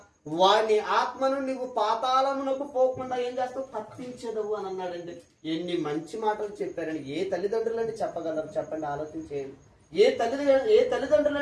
వాడిని ఆత్మను నువ్వు పాతాళమునకు పోకుండా ఏం చేస్తావు? తప్పించదవు అని అన్నాడండి. ఎన్ని మంచి మాటలు చెప్పారండి. ఏ తల్లిదండ్రులండి చెప్పగలరు చెప్పండి? ఆలోచించేయండి. ఏ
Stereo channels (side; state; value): both; identical; correlation 1.00